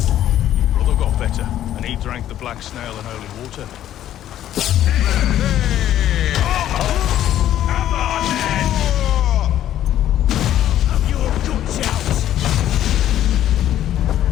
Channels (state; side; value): quieter; right; 11.9 dB